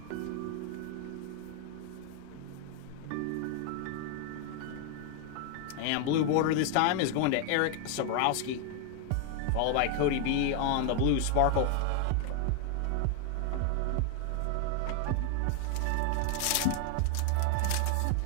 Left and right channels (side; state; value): both; different; correlation 0.00